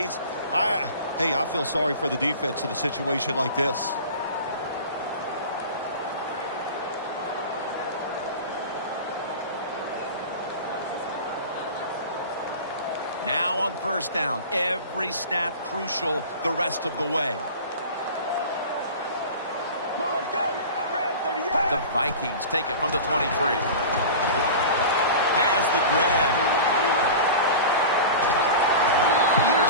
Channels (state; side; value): inverted; both; correlation -0.35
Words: Hey, I feel sorry for the defense in a situation like this. Now on first down, every snap crucial the rest of the way. The Vikings take it from the 23. Has the grab.